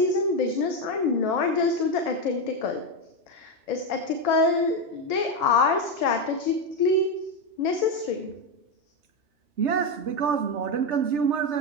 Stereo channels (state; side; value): late; left; 3.3 ms